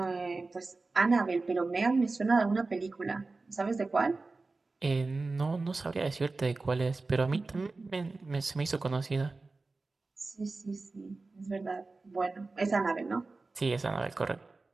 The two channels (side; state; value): left; quieter; 3.6 dB